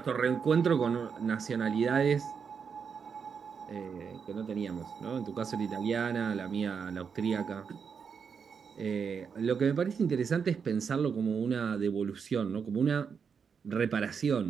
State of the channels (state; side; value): quieter; left; 6.3 dB